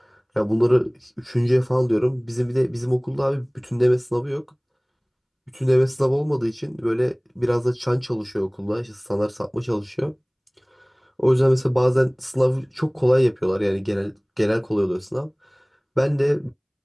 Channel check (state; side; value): identical; both; correlation 1.00